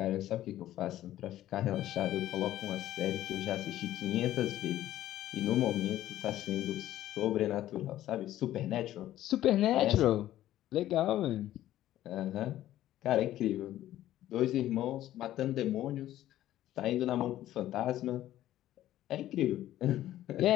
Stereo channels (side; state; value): right; quieter; 13.5 dB